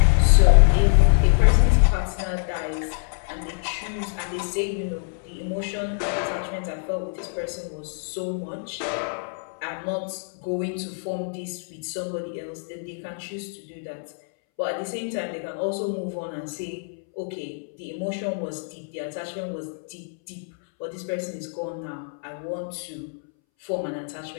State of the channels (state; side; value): silent; right; 62 dB below the other